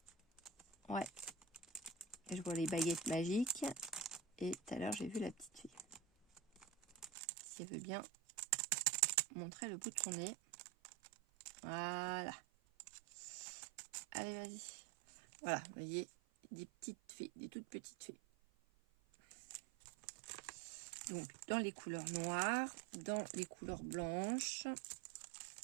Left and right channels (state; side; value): drops out; left; at 7.1 s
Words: Ouais. Je vois les baguettes magiques. Et tout à l'heure, j'ai vu la petite fille. Si elle veut bien montrer le bout de son nez. Voilà. Allez, vas-y. Voilà, vous voyez, des petites fées, des toutes petites fées. Donc, dans les couleurs noires, dans les couleurs blanches.